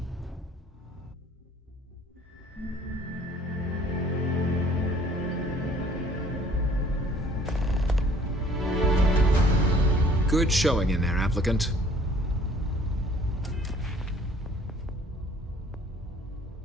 Good showing in there, applicant.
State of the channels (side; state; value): both; normal; correlation 0.55